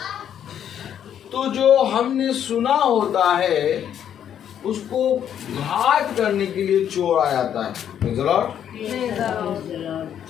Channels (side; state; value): right; quieter; 9.5 dB